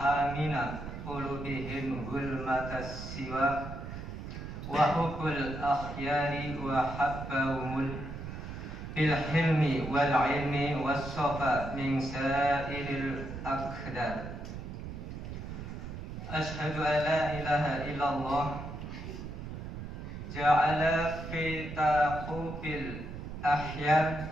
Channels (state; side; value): noise; right; rumble, 8 dB below the sound